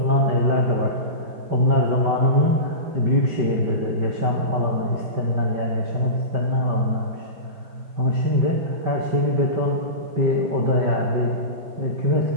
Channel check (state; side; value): late; left; 5.2 ms